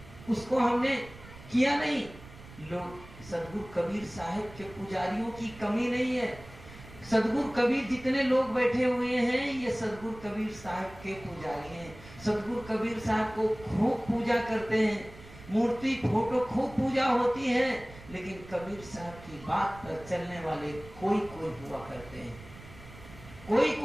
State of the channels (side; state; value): right; noise; rumble, 18 dB below the sound